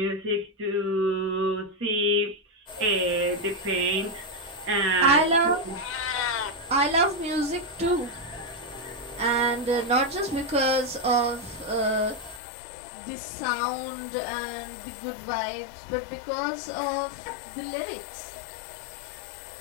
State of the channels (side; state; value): right; drops out; at 12.4 s